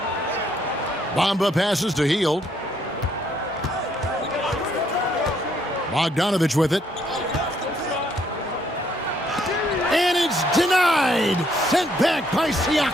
Bamba passes to Hield. Bogdanovich with it. And it's denied. Sent back by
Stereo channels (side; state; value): both; normal; correlation 0.69